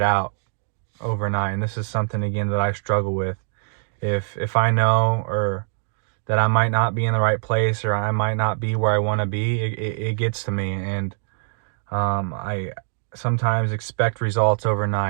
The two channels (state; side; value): silent; left; digital silence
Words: out overnight. And this is something, again, that I struggle with. If I know, or that I might not be in the right place, or I might not be where I want to be, it gets to me. And I sometimes expect results